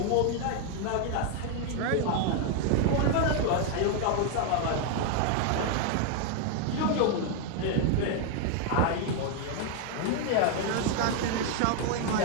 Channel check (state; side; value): different; both; correlation 0.00